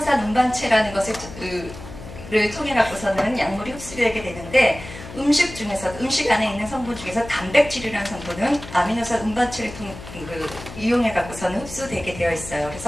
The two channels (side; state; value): left; noise; hum, 14 dB below the sound